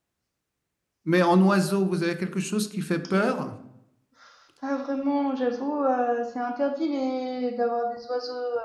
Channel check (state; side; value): identical; both; correlation 1.00